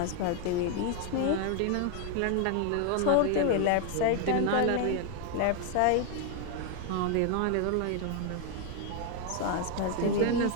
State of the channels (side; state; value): both; different; correlation 0.01